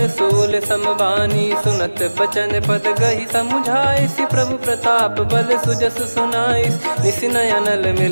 सूल समबानी। सुनत बचन पद गही समुझाए, सि प्रभु प्रताप बल सुजस सुनाइस। निस नयनल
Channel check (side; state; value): both; inverted; correlation -1.00